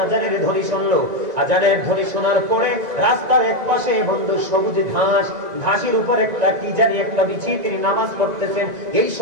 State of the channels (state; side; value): late; left; 1.9 ms